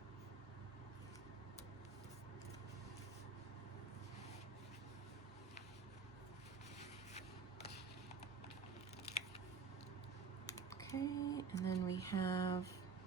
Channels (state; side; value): quieter; left; 5.0 dB